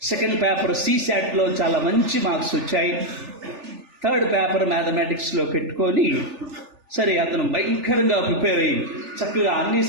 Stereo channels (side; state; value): left; late; 3.4 ms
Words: సెకండ్ పేపర్ సిశాట్ లో చాలా మంచి మార్క్స్ వచ్చాయి. థర్డ్ పేపర్ మ్యాథమెటిక్స్ లో పెట్టుకొని సరే అతను భయంకరంగా ప్రిపేర్ అయ్యి చక్కగా అన్ని